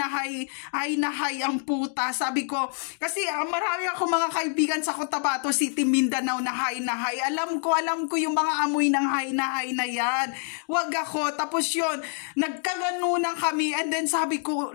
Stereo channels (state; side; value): silent; right; 56 dB below the other